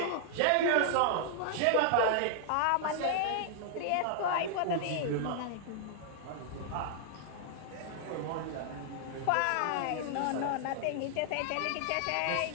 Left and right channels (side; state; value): both; different; correlation -0.01